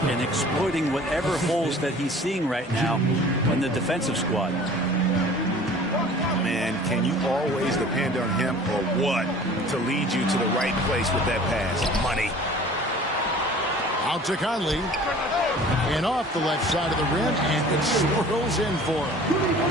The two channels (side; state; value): both; normal; correlation 0.46